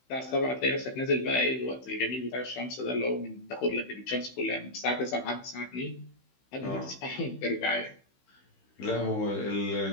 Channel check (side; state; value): right; late; 16 ms